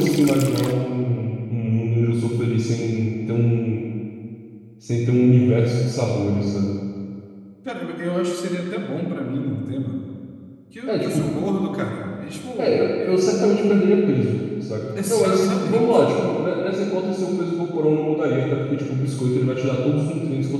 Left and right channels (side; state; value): both; identical; correlation 1.00